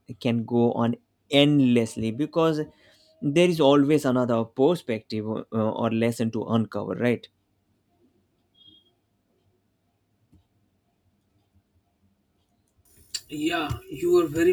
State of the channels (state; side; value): identical; both; correlation 1.00